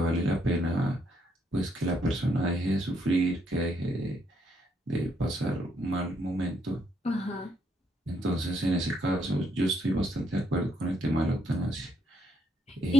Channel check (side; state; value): both; normal; correlation 0.74